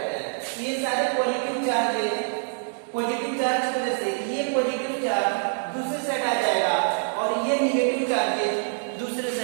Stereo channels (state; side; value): silent; left; digital silence